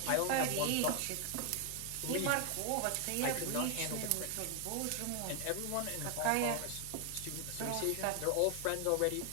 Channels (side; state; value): both; different; correlation 0.00